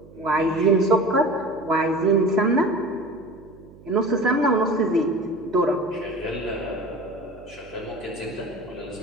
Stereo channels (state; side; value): noise; right; hum, 22 dB below the sound